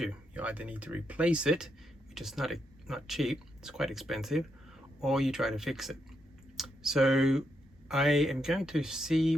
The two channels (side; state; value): both; normal; correlation 0.81